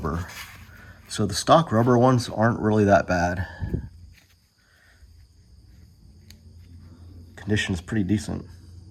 So the stock rubber ones aren't really that bad. Condition is pretty decent,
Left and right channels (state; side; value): identical; both; correlation 1.00